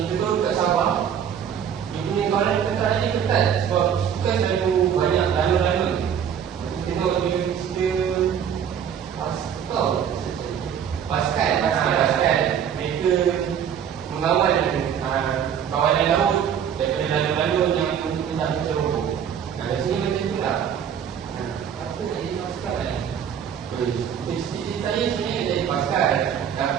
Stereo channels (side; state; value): left; quieter; 8.5 dB